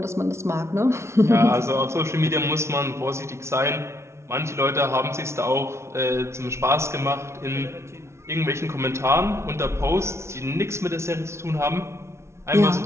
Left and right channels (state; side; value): late; left; 0.13 ms